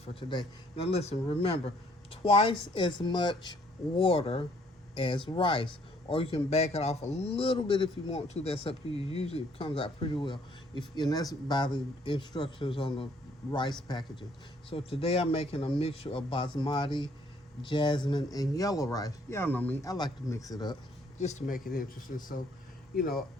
for today. Now listen, remember, twice as much water as rice, or you can back it off a little bit if you want to. That's up to you. Usually it comes out pretty well, and that's by the instructions on the rice packaging. So today I'm making a mixture of basmati, jasmine, and yellow rice. Y'all know me, I like to mix it up just to make it interesting. So, you know,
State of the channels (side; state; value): both; normal; correlation 0.64